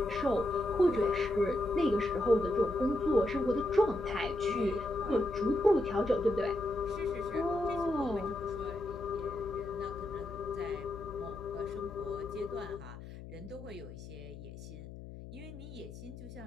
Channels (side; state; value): left; noise; hum, 13 dB below the sound